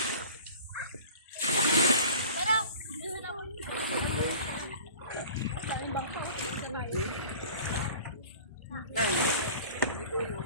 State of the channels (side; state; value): both; inverted; correlation -0.43